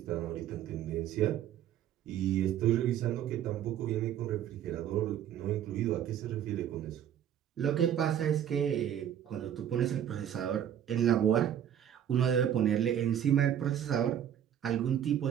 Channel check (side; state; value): left; quieter; 10.1 dB